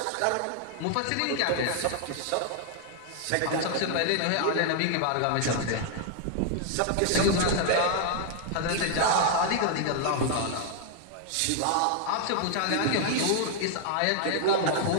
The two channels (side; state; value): both; different; correlation 0.00